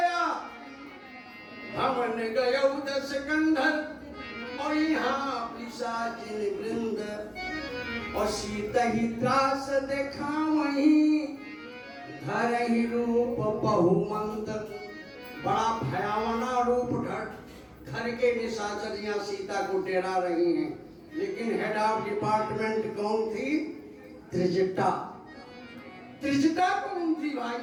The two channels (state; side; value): identical; both; correlation 1.00